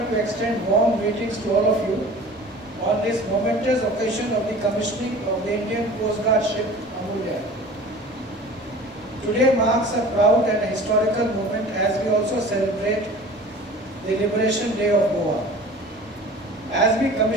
to extend warm greetings to all of you on this momentous occasion of the commissioning of the Indian Coast Guard ship Amulya. Today marks a proud and a historical moment as we also celebrate the Liberation Day of Goa. As we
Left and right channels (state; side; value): normal; both; correlation 0.42